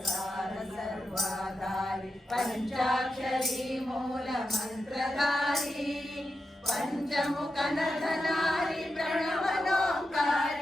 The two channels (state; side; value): normal; both; correlation 0.89